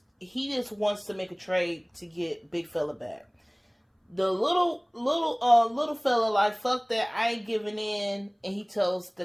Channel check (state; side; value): identical; both; correlation 1.00